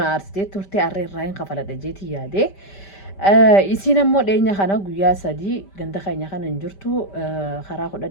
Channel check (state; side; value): late; right; 5.1 ms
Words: أرستي تورتي أرين راين خفلا دجيتي يا دي isiin ammoo dheenya kana guyyaa sadii ganda keenya kana hin jirtu karaa